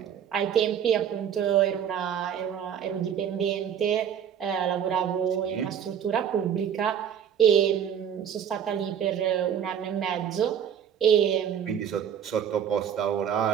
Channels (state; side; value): quieter; left; 8.6 dB